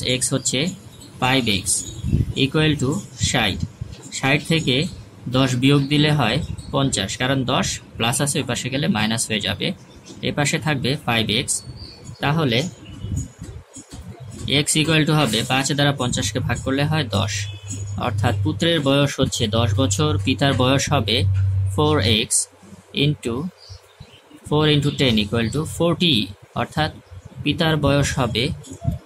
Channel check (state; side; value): identical; both; correlation 1.00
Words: x হচ্ছে 5x ইকুয়াল টু 60। 60 থেকে 10 বিয়োগ দিলে হয় 50, কারণ 10 প্লাস আছে, ওই পাশে গেলে মাইনাস হয়ে যাবে, এ পাশে থাকবে 5x। তাহলে x ইকুয়াল টু হবে 5 দ্বারা 50কে ভাগ করলে হয় 10, অর্থাৎ পুত্রের বয়স হচ্ছে 10 বছর, পিতার বয়স হবে 4x ইন্টু 4 × 10 ইকুয়াল টু 40, অর্থাৎ পিতার বয়স হবে